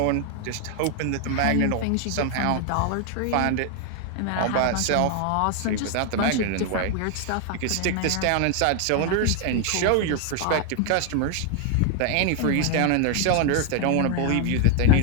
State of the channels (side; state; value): both; different; correlation 0.00